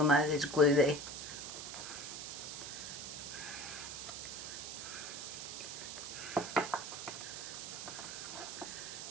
know there's glue there.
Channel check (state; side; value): noise; right; hiss, 7 dB below the sound